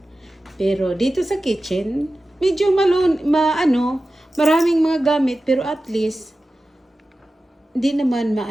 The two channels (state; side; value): normal; both; correlation 0.95